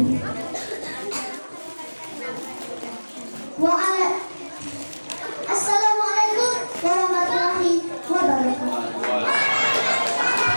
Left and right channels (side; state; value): both; inverted; correlation -1.00